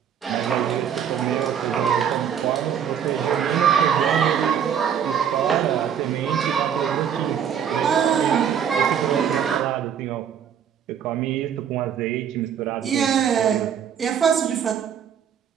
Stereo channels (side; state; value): left; quieter; 8.5 dB